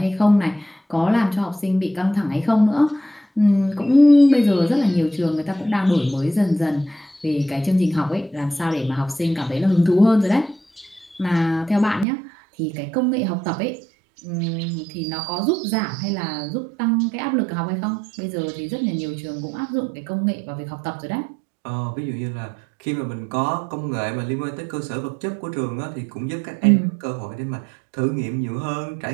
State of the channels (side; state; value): left; drops out; at 12.1 s